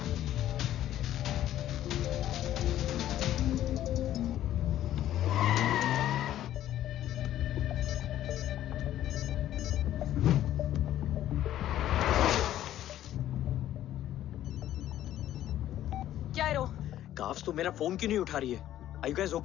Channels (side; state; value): right; quieter; 12.5 dB